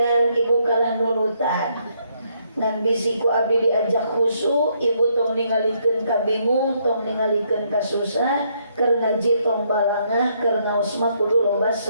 ibu kalah nunutan ngan bisi ku abdi diajak khusyuk ibu tong ningalikeun ka bingung tong ningalikeun ka susah keur ngaji tong balangah keur ngaos mah kudu loba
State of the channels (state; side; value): inverted; both; correlation -0.72